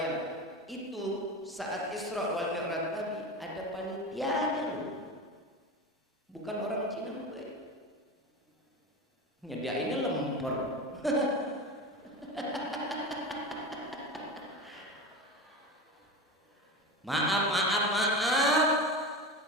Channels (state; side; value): normal; both; correlation 0.25